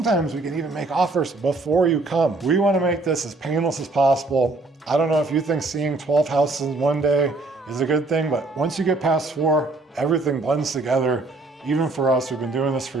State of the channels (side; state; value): left; quieter; 3.3 dB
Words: we can even make offers before you come. We want to make this as painless as possible. I don't know if you think seeing 12 houses in one day is a good thing, but once you get past 4, everything blends together. Even for us, we've been doing this for